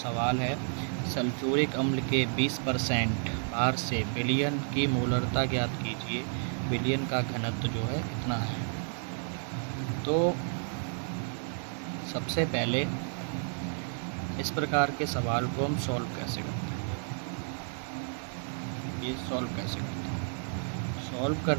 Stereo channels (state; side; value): silent; left; 57 dB below the other